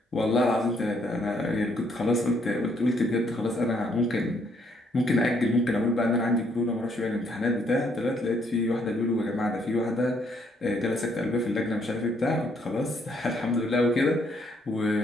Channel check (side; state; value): both; normal; correlation 0.70